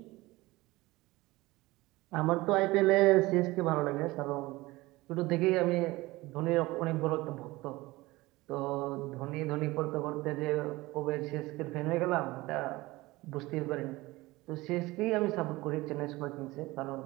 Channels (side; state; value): left; quieter; 20.2 dB